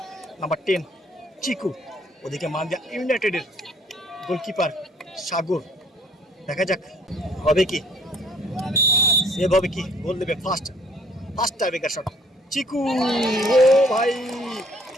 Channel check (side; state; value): both; normal; correlation 0.59